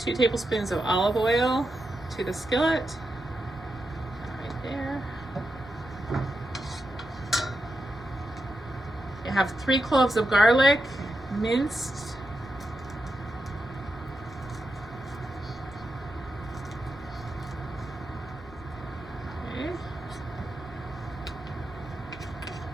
2 tablespoons of olive oil to the skillet. Right there. You have 3 cloves of garlic, minced.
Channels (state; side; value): noise; left; rumble, 20 dB below the sound